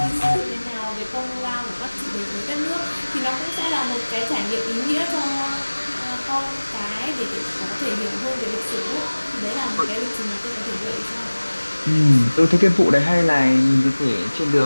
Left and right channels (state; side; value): inverted; both; correlation -1.00